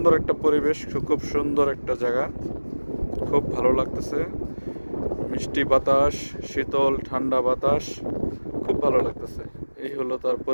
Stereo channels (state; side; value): inverted; both; correlation -1.00